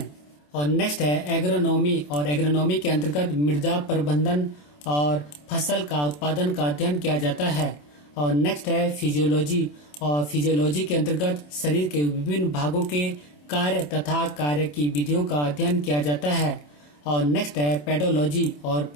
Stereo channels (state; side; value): late; right; 27 ms